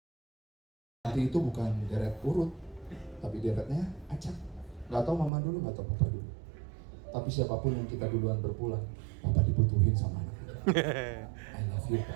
nanti itu bukan deret urut, tapi deretnya acak. Gak tau mama dulu, gak tau papa dulu. Tapi siapapun yang kita duluan berpulang, papa dibutuhin sama anak. I love you,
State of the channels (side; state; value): left; drops out; at 5.3 s